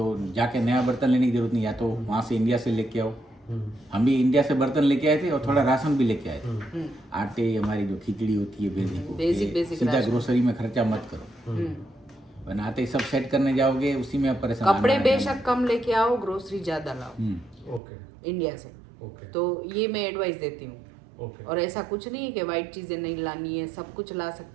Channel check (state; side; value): drops out; left; at 17.8 s